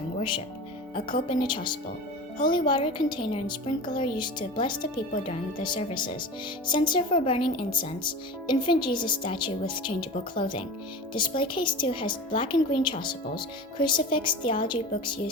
worship, a cope and a chasuble, holy water container and sprinkler used to bless the people during the services, censer for burning incense, infant Jesus statue with changeable clothing. Display case 2 has black and green chasubles, crucifix, theology books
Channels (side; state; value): both; normal; correlation 0.32